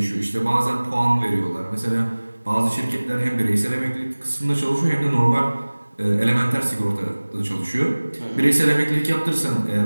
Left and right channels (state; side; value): inverted; both; correlation -1.00